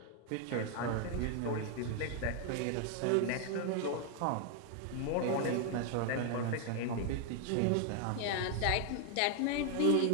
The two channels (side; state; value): both; different; correlation 0.00